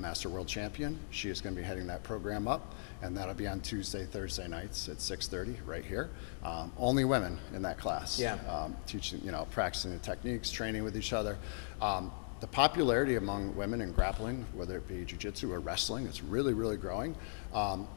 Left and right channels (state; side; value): silent; right; digital silence